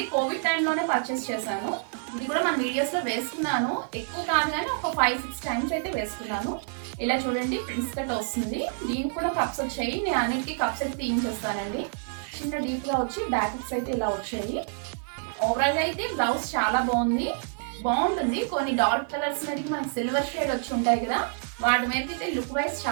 కోవిడ్ టైంలోనే పర్చేస్ చేశాను. ఇది కూడా మన వీడియోస్లో వేసుకున్నాను, ఎక్కువ కాదు కానీ ఒక 5-6 టైమ్స్ అయితే వేసుకున్నాను. ఇలా చూడండి, ప్రిన్స్ కట్ వస్తుంది. దీనికి కూడా కప్స్ వచ్చాయి, నేను అన్నిటికీ కప్స్ అయితే తీయించేస్తానండి. చిన్న డీప్గా వచ్చి బ్యాకెట్స్ అయితే ఇలా వచ్చాయి. ఓవరాల్గా అయితే బ్లౌజ్ చాలా బాగుంటుంది. కొన్ని డార్క్ కలర్స్ మీదకి మనకి సిల్వర్ షేడ్ వచ్చి ఉంటాయి కదా, వాటి మీద అయితే లుక్ వైజ్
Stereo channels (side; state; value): left; silent; digital silence